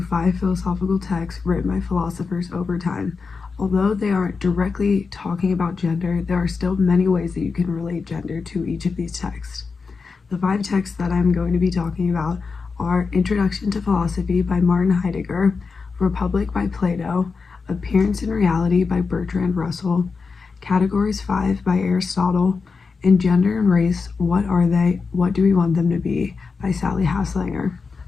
philosophical texts written by philosophers over time. Although they aren't directly talking about gender, there are still many ways that you can relate gender to each of these texts. The 5 texts that I'm going to be talking about are Introduction to Philosophy by Martin Heidegger, Republic by Plato, Appearance and Reality by Bertrand Russell, Categories 5 by Aristotle, and Gender and Race, What Are They? What Do We Want Them to Be? By Sally Haslanger.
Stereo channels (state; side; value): quieter; right; 4.8 dB